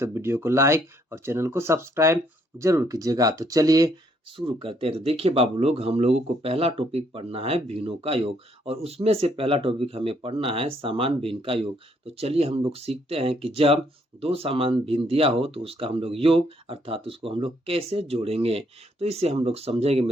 वीडियो को लाइक और चैनल को सब्सक्राइब जरूर कीजिएगा। तो चलिए शुरू करते हैं। तो देखिए बाबू लोग, हम लोगों को पहला टॉपिक पढ़ना है भिन्नों का योग, और उसमें से पहला टॉपिक हमें पढ़ना है समान भिन्न का योग। तो चलिए हम लोग सीखते हैं कि जब दो समान भिन्न दिया हो तो उसका हम लोग योग अर्थात उसको हम लोग कैसे जोड़ेंगे। तो इसे हम लोग समझेंगे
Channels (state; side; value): normal; both; correlation 0.69